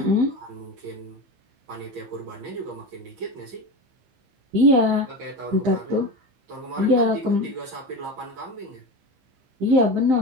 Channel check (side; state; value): left; late; 15 ms